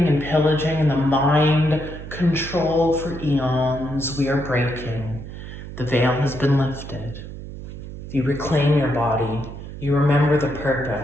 and pillaging and the mind control for eons, we are breaking. The veil has been lifted. You reclaim your body. You remember the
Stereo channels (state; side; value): noise; right; hum, 11 dB below the sound